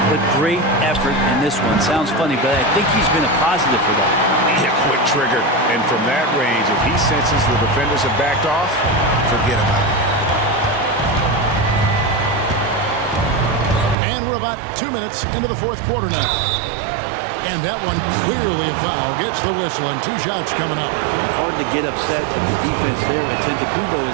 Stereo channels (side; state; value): left; drops out; at 14.0 s